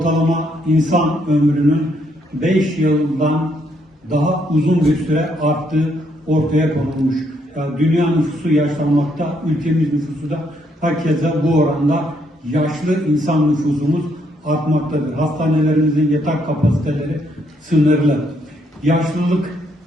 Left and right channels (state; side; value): normal; both; correlation 0.73